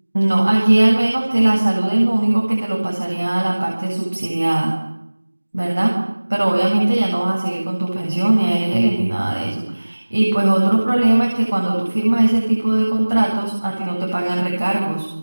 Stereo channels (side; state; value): both; inverted; correlation -1.00